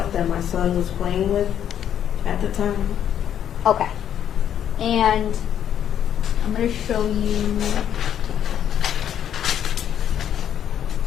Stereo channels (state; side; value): quieter; right; 9.7 dB